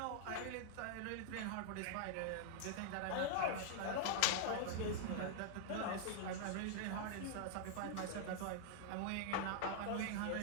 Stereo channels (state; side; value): different; both; correlation -0.01